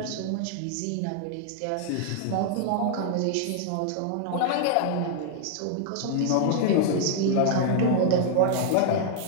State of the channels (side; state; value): both; different; correlation 0.00